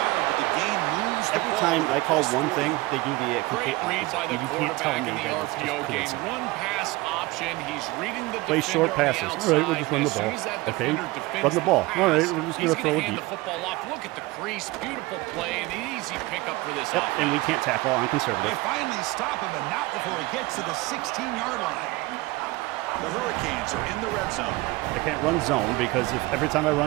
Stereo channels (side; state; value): left; quieter; 21.1 dB